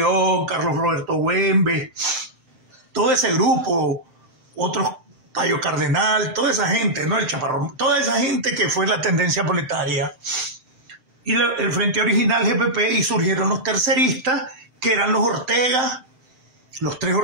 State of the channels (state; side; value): late; left; 7.7 ms